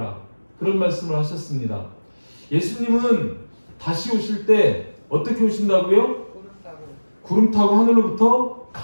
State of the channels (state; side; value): inverted; both; correlation -1.00